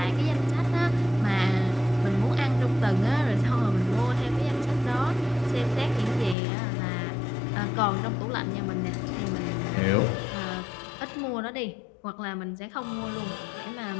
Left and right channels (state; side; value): drops out; right; at 6.4 s